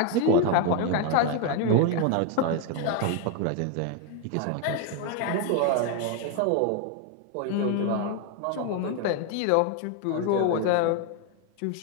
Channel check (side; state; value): both; different; correlation 0.01